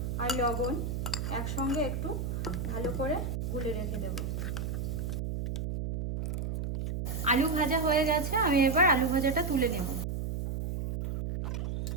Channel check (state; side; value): noise; right; hum, 3 dB below the sound